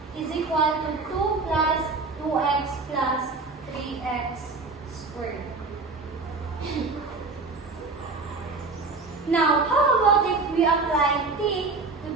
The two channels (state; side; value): quieter; left; 3.8 dB